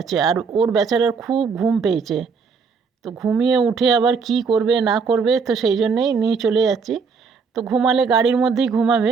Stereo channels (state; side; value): quieter; left; 5.3 dB